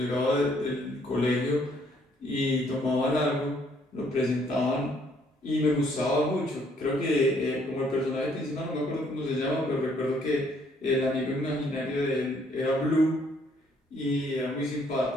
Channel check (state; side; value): normal; both; correlation 0.66